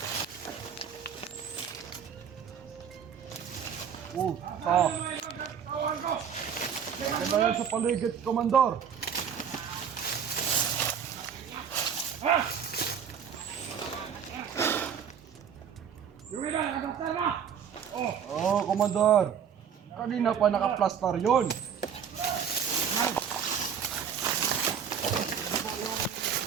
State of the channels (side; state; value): left; quieter; 7.7 dB